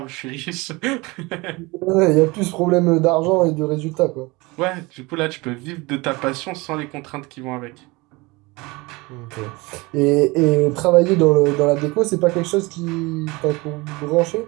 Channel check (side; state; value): left; quieter; 24.0 dB